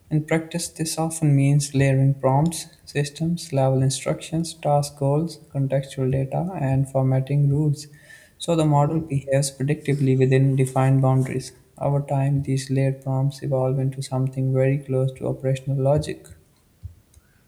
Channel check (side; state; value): both; identical; correlation 1.00